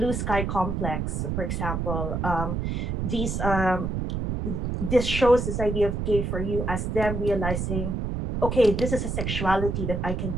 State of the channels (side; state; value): right; noise; rumble, 2 dB below the sound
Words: Sky Complex, for example. This shows this idea of gay for you as them realizing, okay, this is a sexuality that I can